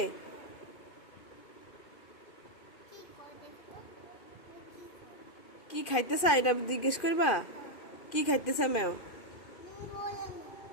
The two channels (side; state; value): right; late; 2.5 ms